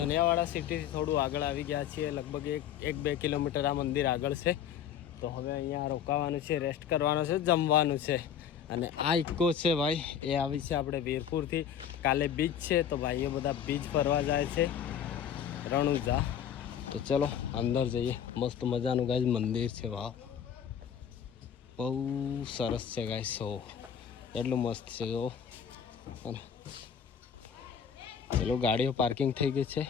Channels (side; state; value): right; quieter; 8.6 dB